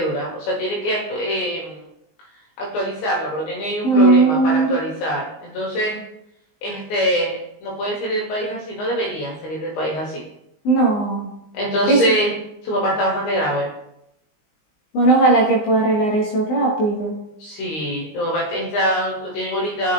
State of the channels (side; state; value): right; late; 19 ms